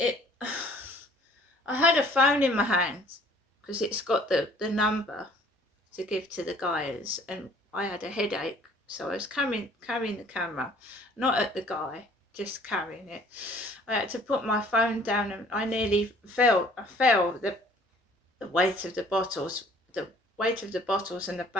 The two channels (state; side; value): normal; both; correlation 0.55